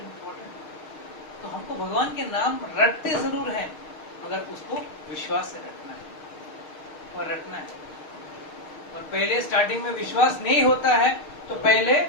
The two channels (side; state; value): right; late; 6.5 ms